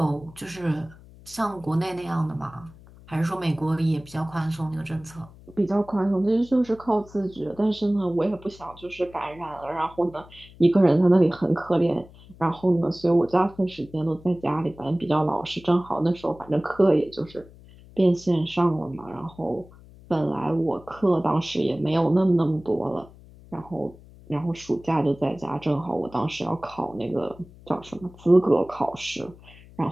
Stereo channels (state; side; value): noise; left; hum, 22 dB below the sound